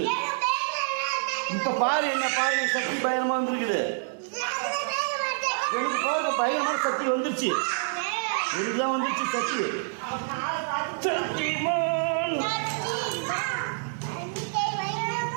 இப்ப பாரு என்ன பாரு சக்தி பயங்கரமா வந்துருக்குது. எனக்கு பாருங்க பயங்கரமான சக்தி வந்துருச்சு. எனக்குதான் வந்துருச்சு சக்தி. சக்திமான்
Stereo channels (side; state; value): left; silent; digital silence